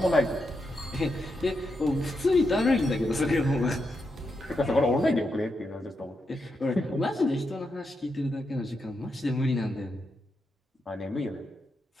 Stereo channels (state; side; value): normal; both; correlation 0.84